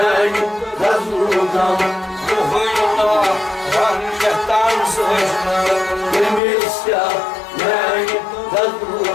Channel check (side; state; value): right; drops out; at 6.4 s